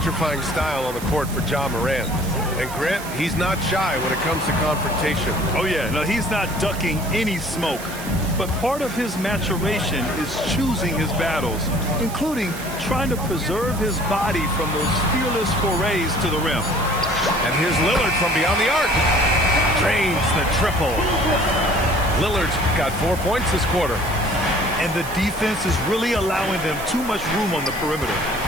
style on the court for Ja Morant. And Grant, he's not shy when it comes to confrontation. Oh yeah, no, he's not ducking any smoke. But part of his maturation is choosing his battles, including trying to preserve his body from those fearless forays to the rim. And here's Lillard from beyond the arc. Drains the triple. Lillard's got 4 points this quarter. And the defense is really allowing them too much room on the perimeter.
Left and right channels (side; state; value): right; noise; hiss, 13 dB below the sound